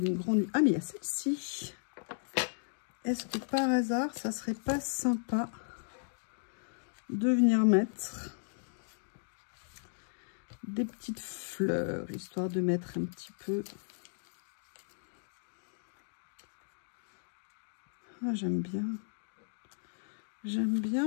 grande... Ah, mais il y a celle-ci. Est-ce que par hasard, ça serait pas sympa de venir mettre des petites fleurs, histoire de mettre un petit peu... Ah, j'aime bien. J'aime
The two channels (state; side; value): silent; right; digital silence